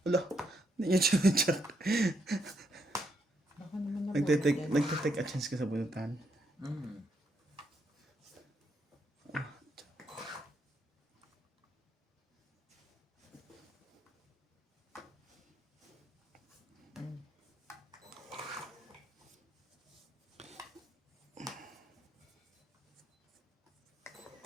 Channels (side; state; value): both; normal; correlation 0.76